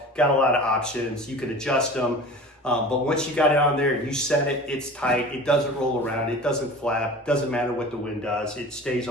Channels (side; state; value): both; normal; correlation 0.38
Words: Got a lot of options. You can adjust them. But once you got it on there and you set it, it's tight. It doesn't roll around. It doesn't flap. Doesn't matter what the wind does. It stays